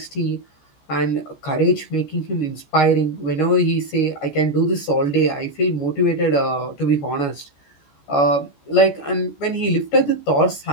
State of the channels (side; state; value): right; late; 14 ms